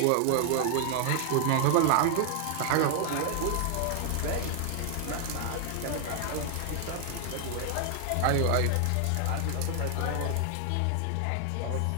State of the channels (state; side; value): different; both; correlation 0.00